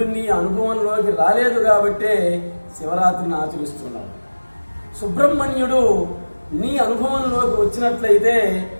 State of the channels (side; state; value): both; inverted; correlation -1.00